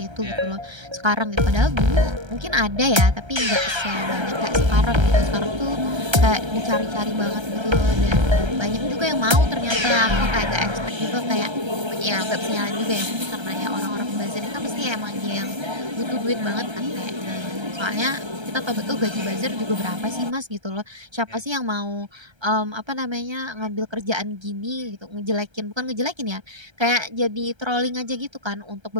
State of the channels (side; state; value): left; late; 1.3 ms